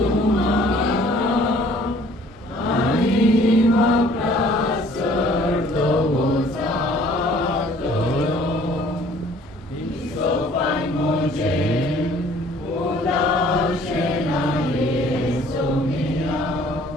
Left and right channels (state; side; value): normal; both; correlation 0.55